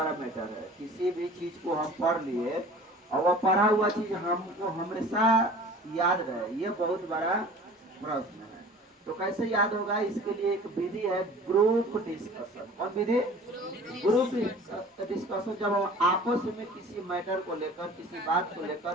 मैटर है। किसी भी चीज को हम पढ़ लिए और वह पढ़ा हुआ चीज हमको हमेशा याद रहे, ये बहुत बड़ा प्रश्न है। तो कैसे याद होगा, इसके लिए एक विधि है, ग्रुप डिस्कशन। कौन विधि? Group discussion. जब हम आपस में किसी मैटर को लेकर, किसी बात को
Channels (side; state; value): both; normal; correlation 0.44